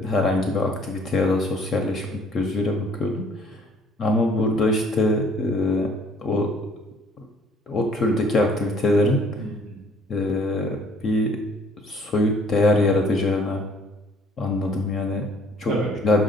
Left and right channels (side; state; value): both; normal; correlation 0.58